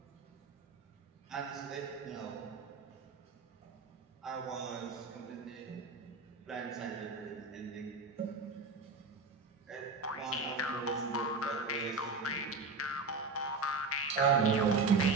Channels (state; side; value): quieter; left; 3.9 dB